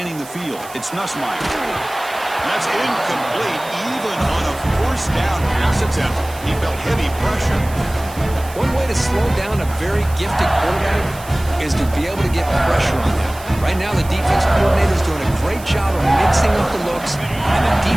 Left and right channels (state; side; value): noise; right; hiss, 18 dB below the sound